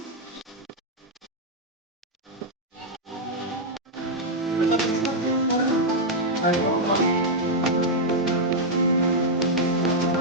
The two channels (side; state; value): both; normal; correlation -0.03